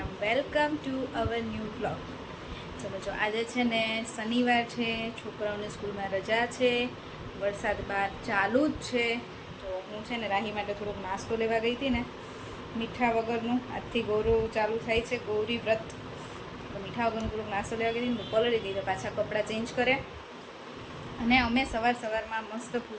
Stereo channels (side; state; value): both; identical; correlation 1.00